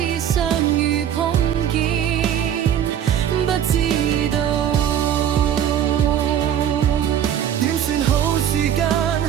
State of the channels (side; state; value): left; quieter; 9.8 dB